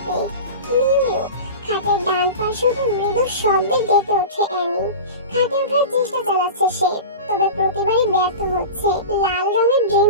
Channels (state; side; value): inverted; both; correlation -0.30